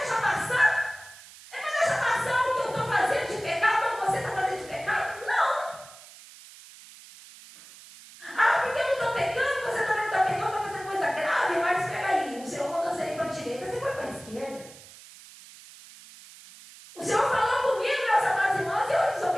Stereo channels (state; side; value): noise; right; hiss, 19 dB below the sound